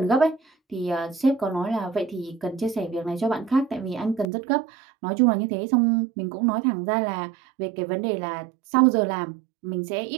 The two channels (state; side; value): drops out; left; at 4.2 s